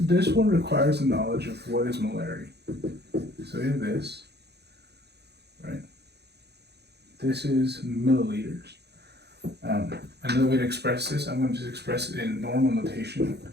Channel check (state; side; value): late; left; 0.48 ms